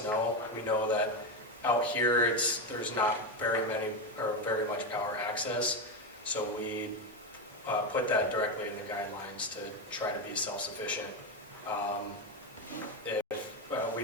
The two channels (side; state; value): both; normal; correlation 0.12